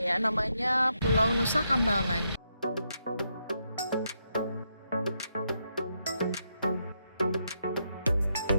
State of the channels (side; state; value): both; inverted; correlation -0.81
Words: ya, namanya Pulau Nusa Kambangan.